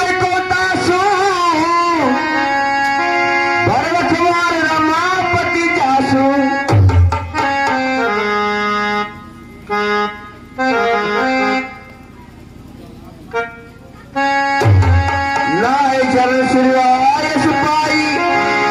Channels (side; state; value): both; identical; correlation 1.00